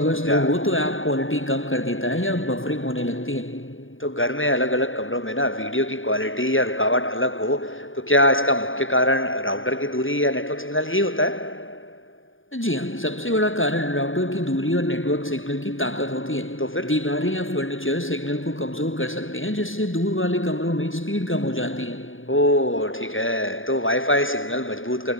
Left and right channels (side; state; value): right; late; 0.58 ms